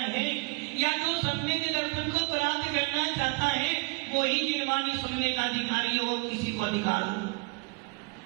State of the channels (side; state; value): left; quieter; 29.6 dB